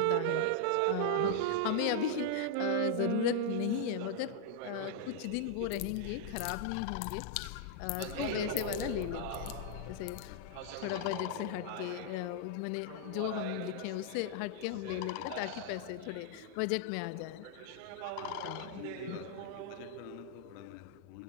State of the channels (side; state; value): both; different; correlation 0.00